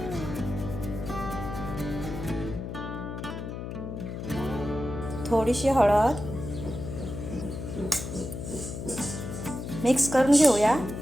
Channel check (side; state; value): left; noise; hum, 7 dB below the sound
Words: थोडीशी हळद मिक्स करून घेऊया.